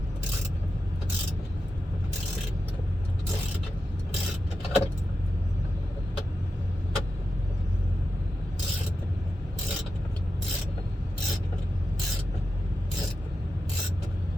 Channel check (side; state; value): both; normal; correlation 0.90